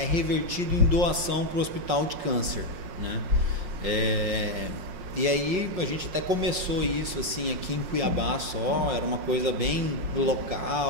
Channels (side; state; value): left; late; 5.6 ms